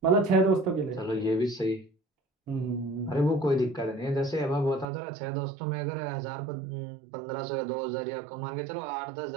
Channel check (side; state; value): left; drops out; at 4.9 s